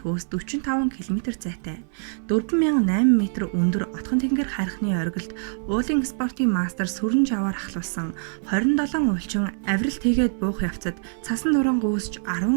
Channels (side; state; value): left; silent; 61 dB below the other